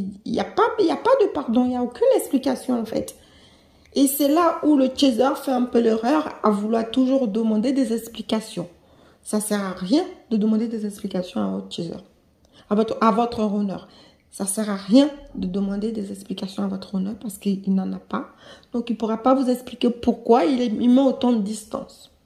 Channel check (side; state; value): both; identical; correlation 1.00